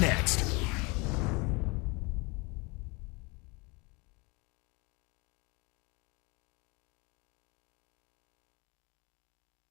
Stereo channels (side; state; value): right; quieter; 28.0 dB